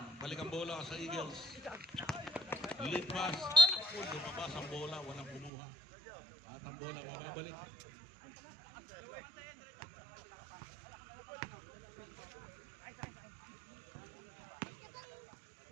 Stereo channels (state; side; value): drops out; left; at 5.5 s